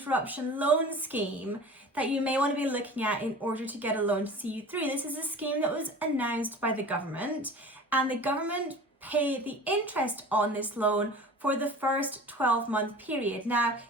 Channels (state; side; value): normal; both; correlation 0.39